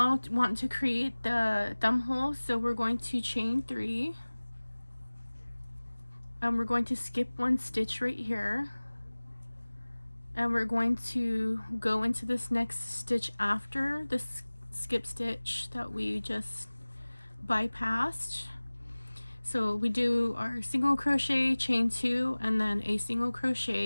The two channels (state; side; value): inverted; both; correlation -1.00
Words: want to create the thumb hole, so we're going to chain 3 and we're going to skip 1 stitch right here, and we're going to go into this next stitch after this skip stitch that we just bypassed. So we do our single crochet, chain 2, and then a single